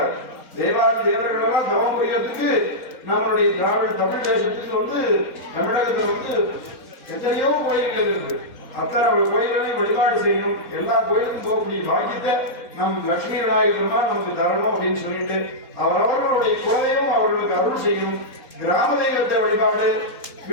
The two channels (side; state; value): right; late; 4.1 ms